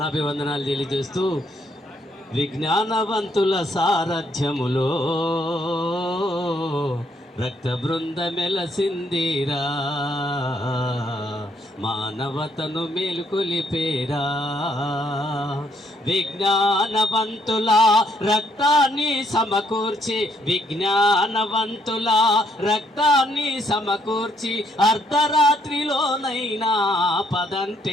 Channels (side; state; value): both; normal; correlation 0.71